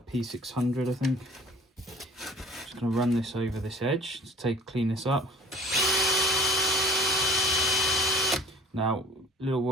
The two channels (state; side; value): normal; both; correlation 0.48